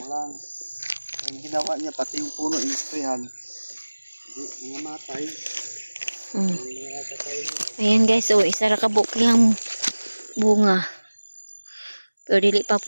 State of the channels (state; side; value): inverted; both; correlation -1.00